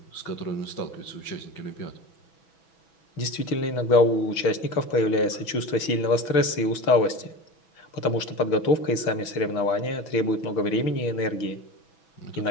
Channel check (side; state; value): right; late; 6.1 ms